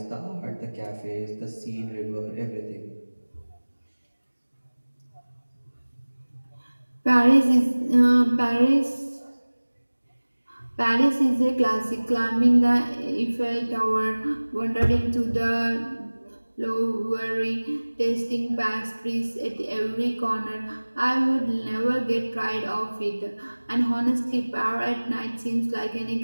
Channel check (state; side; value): inverted; both; correlation -1.00